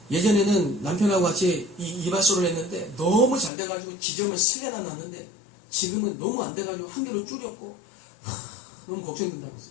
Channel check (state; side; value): drops out; right; at 3.5 s